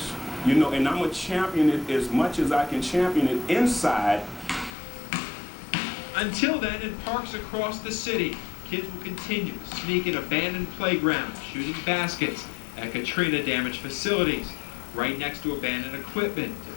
You know, and I'm going to champion it as much as I can champion it inside. Until then, in parks across the city, kids will continue to sneak in abandoned playgrounds, shooting baskets at Katrina-damaged facilities, right next to abandoned equipment,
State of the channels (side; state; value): right; drops out; at 4.8 s